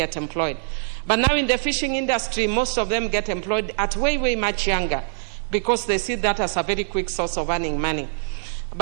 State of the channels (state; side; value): silent; left; digital silence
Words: employed. But now in the fishing industry, most of them get employed at way, way much younger, because they see that as a very quick source of earning money.